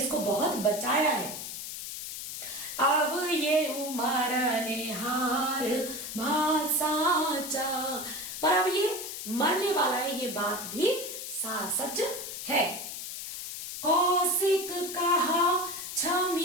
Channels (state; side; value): noise; left; hiss, 7 dB below the sound